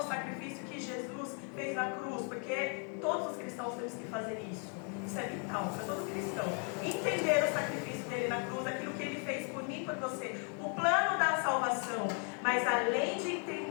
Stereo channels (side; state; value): right; quieter; 39.7 dB